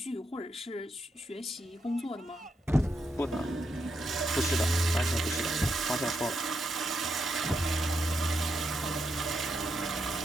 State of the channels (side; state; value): both; normal; correlation 0.82